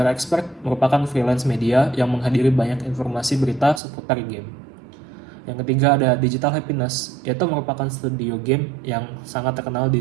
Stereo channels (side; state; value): left; drops out; at 3.8 s